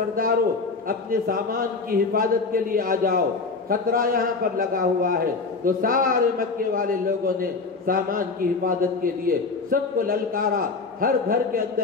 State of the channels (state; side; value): quieter; right; 4.3 dB